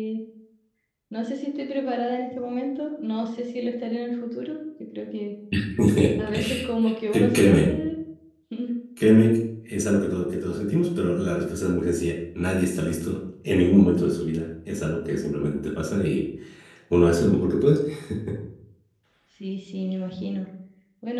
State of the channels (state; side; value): identical; both; correlation 1.00